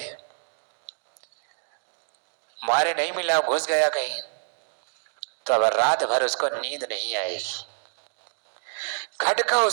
مارے نہیں ملا، گھس گیا کہیں، تو اب رات بھر اس کو نیند نہیں آئے گی، کھٹکا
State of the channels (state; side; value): silent; left; digital silence